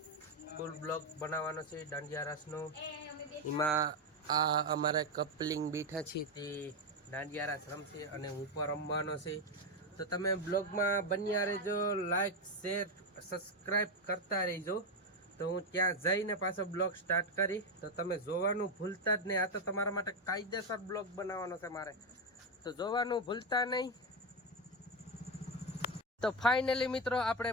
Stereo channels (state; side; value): normal; both; correlation 0.09